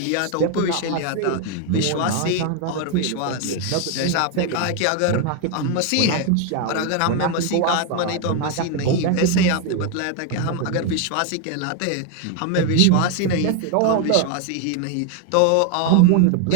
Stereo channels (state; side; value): different; both; correlation 0.01